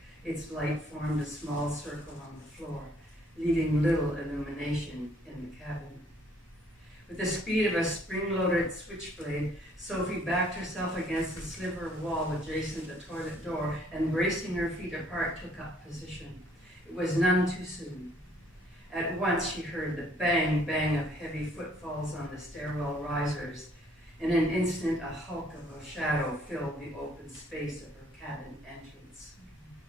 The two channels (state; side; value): normal; both; correlation 0.62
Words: Its light formed a small circle on the floor, leaving little illumination in the cabin. With the speed of a spring-loaded switchblade, Sophie backed herself against the sliver of wall adjacent the toilet door and, bracing her feet apart, took up position. It was none too soon. At once she heard the bang-bang of heavy footfalls on the stairwell risers. In an instant, a hulk of a shadow filled the open space of her cabin entrance.